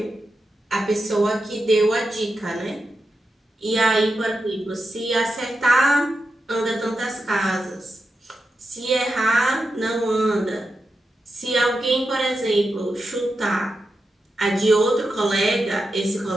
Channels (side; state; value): both; normal; correlation 0.89